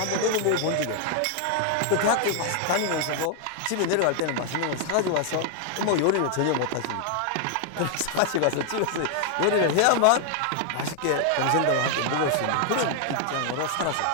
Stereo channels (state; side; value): different; both; correlation 0.00